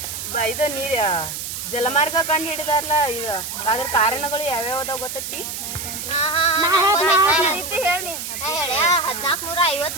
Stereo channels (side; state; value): right; noise; hiss, 6 dB below the sound